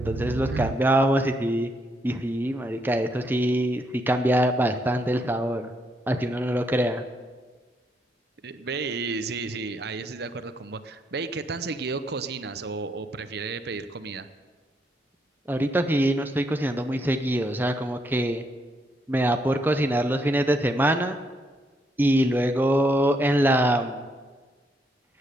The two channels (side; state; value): both; normal; correlation 0.75